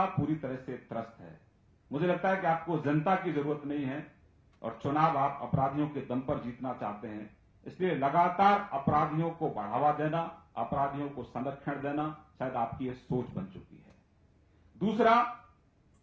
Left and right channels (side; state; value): both; identical; correlation 1.00